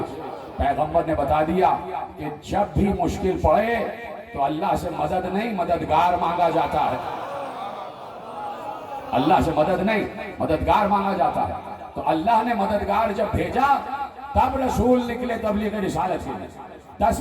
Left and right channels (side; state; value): both; identical; correlation 1.00